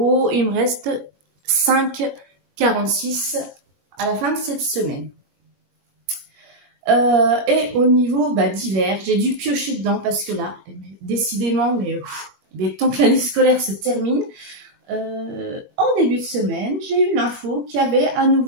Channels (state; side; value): late; left; 21 ms